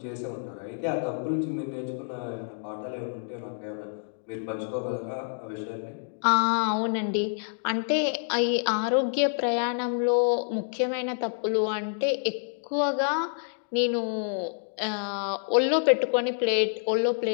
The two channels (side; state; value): right; silent; digital silence